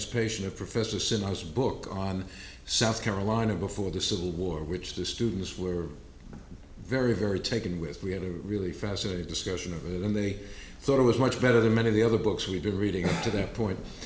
of Professor Sinha's book on South Carolina before the Civil War, which the students were very, very taken with. We had a really fascinating discussion of it, and they thought it was much better than many of the other books we'd been reading up to that point.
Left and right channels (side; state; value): both; identical; correlation 1.00